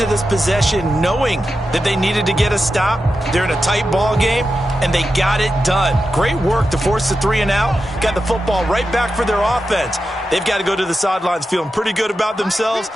this possession knowing that they needed to get a stop. They're in a tight ball game, and they got it done. Great work to force the 3 and out. Got the football right back for their offense. They've got to go to the sidelines feeling pretty good about themselves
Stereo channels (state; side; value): normal; both; correlation 0.90